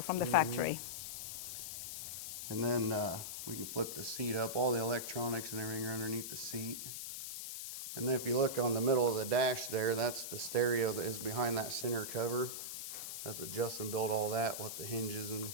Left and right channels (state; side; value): noise; left; hiss, 6 dB below the sound